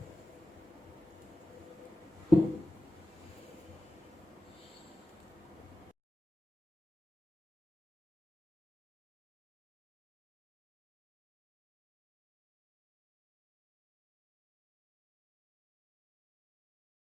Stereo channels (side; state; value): both; normal; correlation 0.95